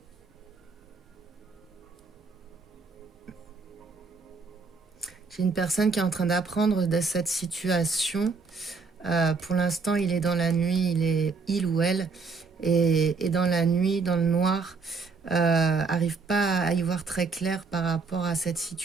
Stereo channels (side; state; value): left; quieter; 4.5 dB